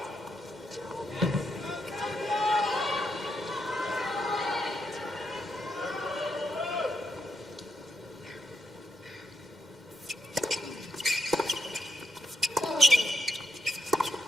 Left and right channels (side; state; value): both; normal; correlation 0.80